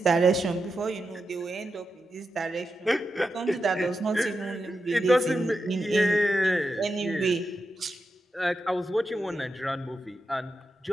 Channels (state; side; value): normal; both; correlation 0.88